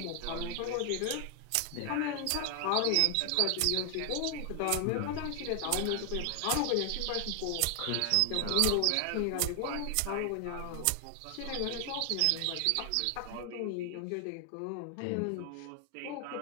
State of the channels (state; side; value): different; both; correlation 0.00